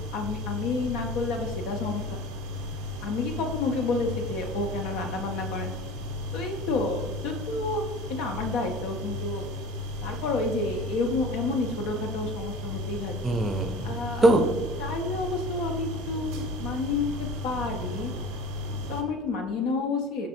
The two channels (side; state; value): both; normal; correlation 0.40